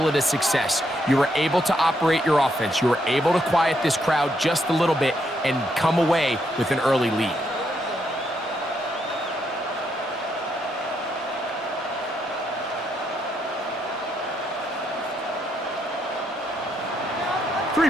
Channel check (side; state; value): both; normal; correlation 0.77